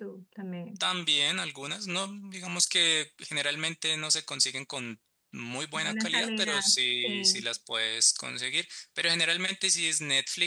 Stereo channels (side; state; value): both; identical; correlation 1.00